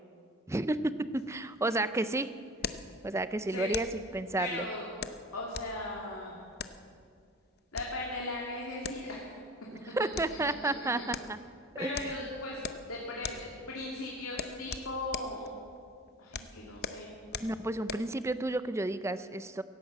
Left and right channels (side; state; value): both; normal; correlation 0.42